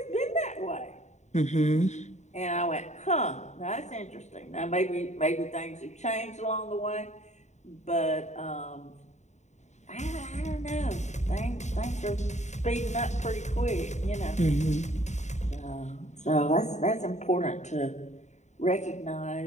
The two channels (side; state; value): right; late; 0.34 ms